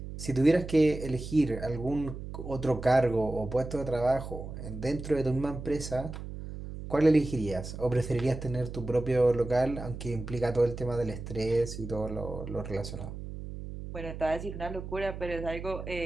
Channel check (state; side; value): noise; right; hum, 9 dB below the sound